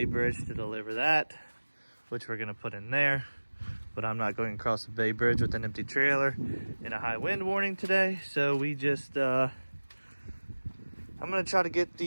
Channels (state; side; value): inverted; both; correlation -1.00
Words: Bridge to deliver that, which we're gonna put in there. But I'm not going across the Bay Bridge with an empty trailer in a high wind warning today. So we just, I'm gonna try to get